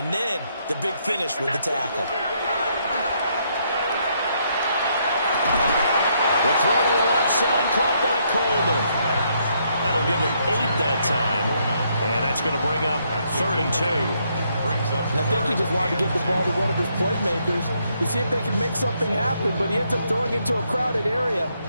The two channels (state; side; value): inverted; both; correlation -0.73